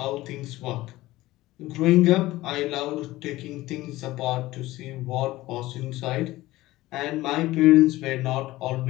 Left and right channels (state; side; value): quieter; right; 17.7 dB